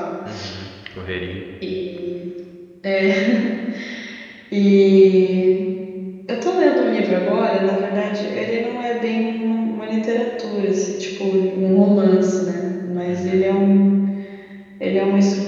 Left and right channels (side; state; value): both; identical; correlation 1.00